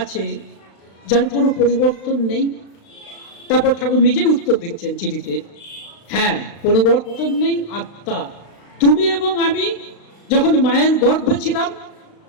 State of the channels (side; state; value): right; late; 36 ms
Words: যার কোনো পরিবর্তন নেই? তারপর ঠাকুর নিজেই উত্তর দিচ্ছেন চিঠিতে, হ্যাঁ পরিবর্তন নেই আত্মা। তুমি এবং আমি যখন মায়ের গর্ভে ছিলাম